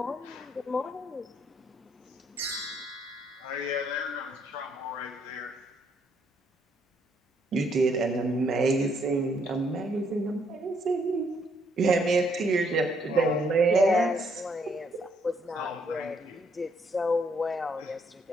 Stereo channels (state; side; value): normal; both; correlation 0.70